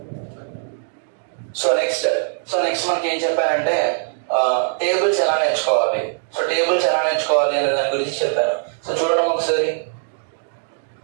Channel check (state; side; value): silent; left; digital silence